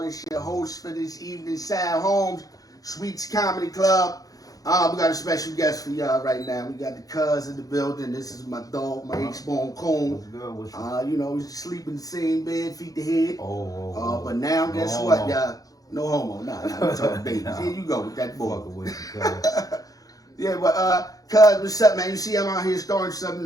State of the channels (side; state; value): right; late; 0.17 ms